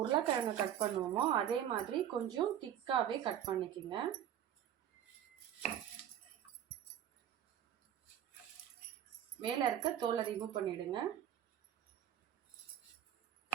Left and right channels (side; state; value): left; quieter; 10.3 dB